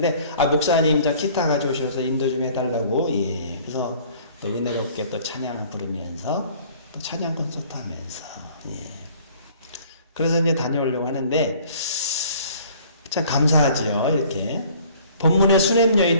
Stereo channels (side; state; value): both; inverted; correlation -0.53